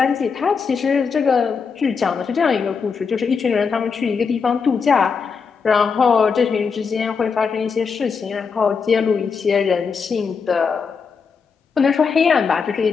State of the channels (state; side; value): quieter; right; 5.6 dB